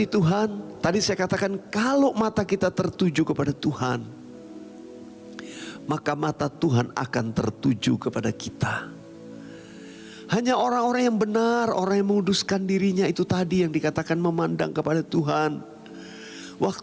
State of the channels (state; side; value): identical; both; correlation 1.00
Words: Tuhan, tadi saya katakan kalau mata kita tertuju kepada Tuhan, maka mata Tuhan akan tertuju kepada kita. Hanya orang-orang yang benar, orang yang menguduskan dirinya, itu tadi yang dikatakan memandang kepada Tuhan.